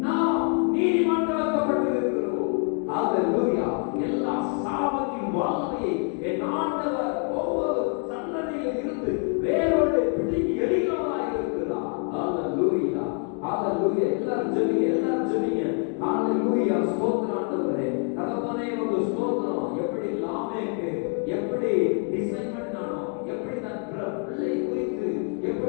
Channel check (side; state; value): right; quieter; 39.2 dB